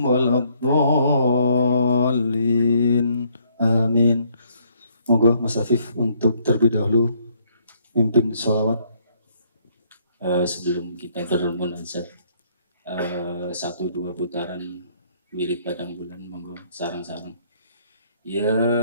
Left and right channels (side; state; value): both; inverted; correlation -0.67